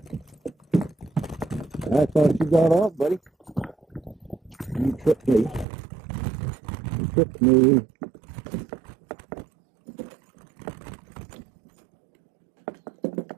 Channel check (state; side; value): drops out; left; at 5.7 s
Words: I thought you got off, buddy. You tripped me. You tripped me.